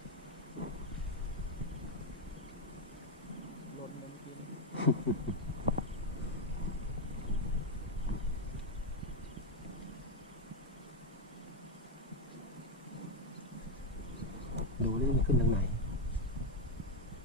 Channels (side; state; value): both; normal; correlation 0.04